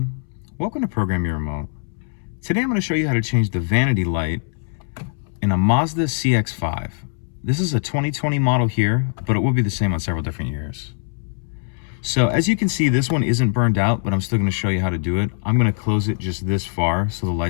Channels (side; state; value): right; silent; 64 dB below the other